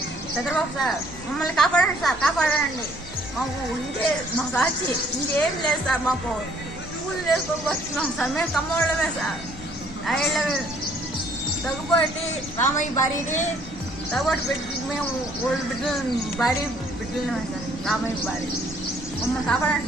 చంద్రబాబు సార్ మమ్మల్ని కాపాడండి సార్, కాపాడండి. మాకు ఇంకే మాకు వచ్చి ఇంకేం లేదు సార్. మాకు పూలు వేసుకోవచ్చున్నాం సార్. మేము కమ్మోళ్ళమే సార్. ఐళ్ళమే తగ్గుబట్టి రామయ్య భార్యని తగ్గుబట్టి పెట్టి మేము ఓల్డ్ బిడ్డలు భార్య బిడ్డలమే సార్. రామయ్య భార్య మమ్మల్ని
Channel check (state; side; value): normal; both; correlation 0.61